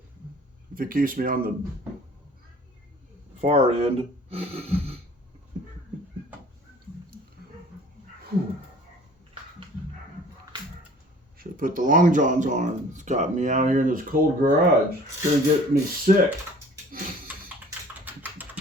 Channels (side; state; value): both; normal; correlation 0.49